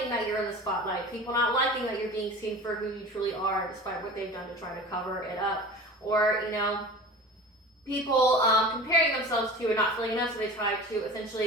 that you're in the spotlight, people not liking that you're being seen for who you truly are, despite what they've done to try to cover it up. Or, people comparing themselves to and not feeling enough, so they try to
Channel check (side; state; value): both; normal; correlation 0.36